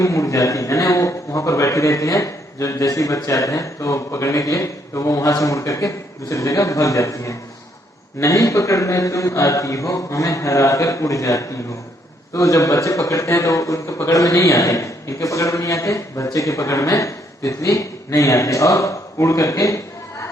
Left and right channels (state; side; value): normal; both; correlation 0.71